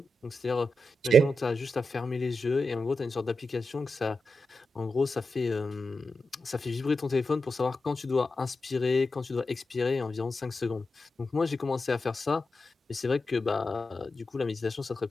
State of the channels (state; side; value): normal; both; correlation 0.88